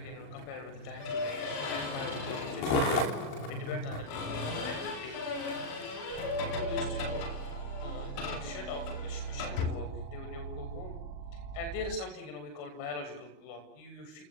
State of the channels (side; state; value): right; late; 36 ms